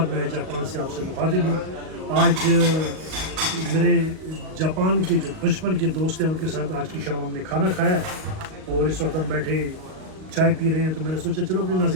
میں جاپان سے آپ سے مخاطب ہوں۔ آج میرے جاپان کے جو بچپن کے دوست ہیں ان کے ساتھ آج کی شام ہم نے کھانا کھایا ہے اور اس وقت ہم بیٹھے چائے پی رہے ہیں، تو میں نے سوچا چلو اپنے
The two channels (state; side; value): late; left; 38 ms